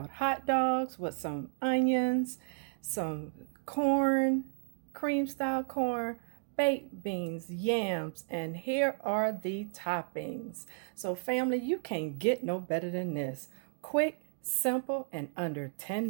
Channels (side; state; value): left; silent; digital silence